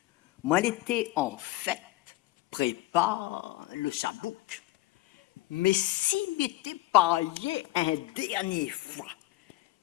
Moi, elle était en fête. Prépare le chabouk. Mais s'il m'était paillé un dernier fois,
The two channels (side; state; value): right; quieter; 17.5 dB